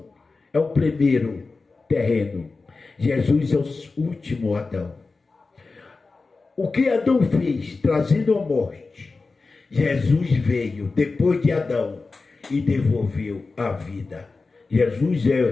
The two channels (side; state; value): right; quieter; 3.9 dB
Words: é o primeiro terreno, Jesus é o último Adão. O que Adão fez, trazendo a morte, Jesus veio depois de Adão e devolveu a vida. Jesus